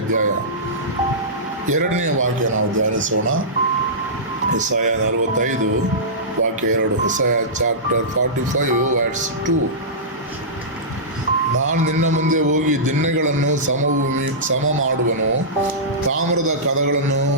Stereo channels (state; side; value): normal; both; correlation -0.17